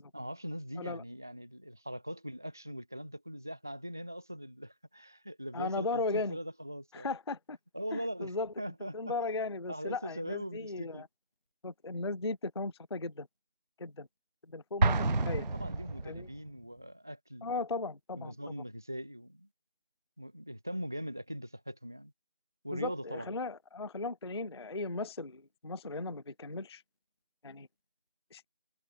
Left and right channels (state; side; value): inverted; both; correlation -0.52